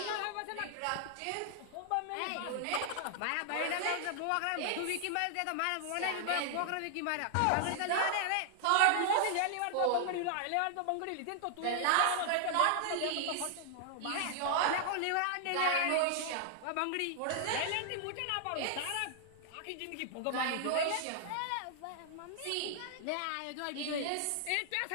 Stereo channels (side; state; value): both; different; correlation -0.01